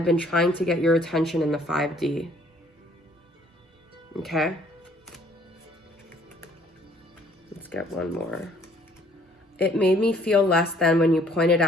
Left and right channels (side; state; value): both; normal; correlation 0.60